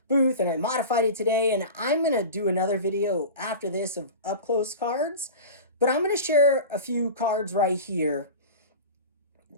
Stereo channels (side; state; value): both; inverted; correlation -0.31